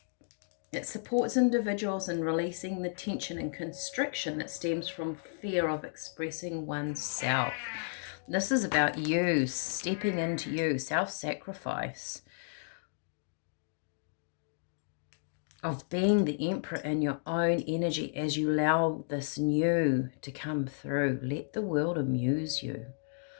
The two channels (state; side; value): silent; right; digital silence